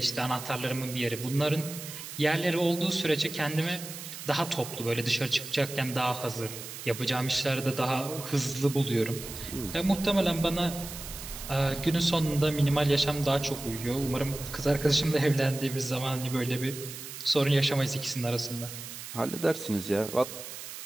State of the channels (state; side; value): noise; right; hiss, 11 dB below the sound